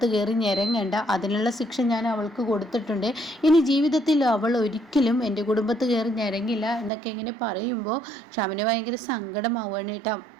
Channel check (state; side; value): drops out; left; at 6.9 s